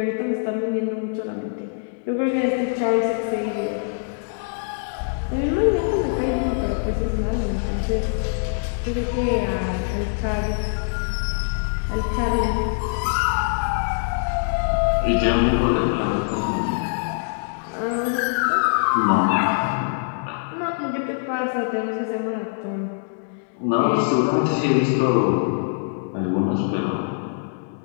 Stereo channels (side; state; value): right; silent; digital silence